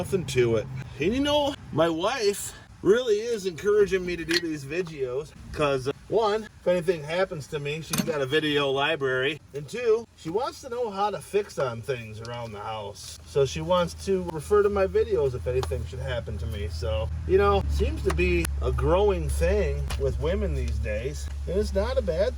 to it. And you know, my wife really is encouraging me to do these videos because one, if anything happens to me, she's got a video library. And two, she wants to know how to fix on things around the house. So she wants to refer to my videos if anything should happen to me. So, you know, seems to be a growing thing with women these days. And it's not a bad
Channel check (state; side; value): identical; both; correlation 1.00